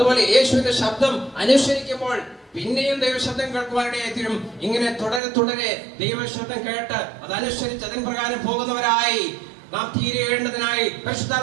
യേശുവിന്റെ ശബ്ദം അനുസരിക്കുമ്പോൾ പിന്നെയും ദൈവശബ്ദം കേൾക്കുവാനിടയായിത്തീരും. ഇങ്ങനെ തുടരെ ദൈവശബ്ദം കേട്ട് അതനുസരിച്ച് അതിൻ പ്രകാരം പോകുന്നവരായി നാം തീരേണ്ടതിനായി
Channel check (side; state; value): left; drops out; at 5.2 s